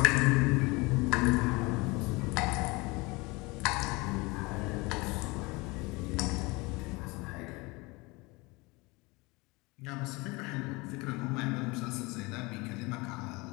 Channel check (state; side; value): quieter; right; 24.8 dB